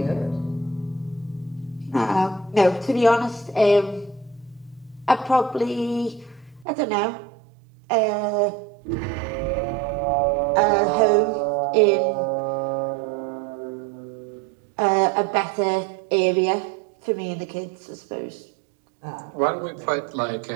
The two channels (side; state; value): left; drops out; at 6.7 s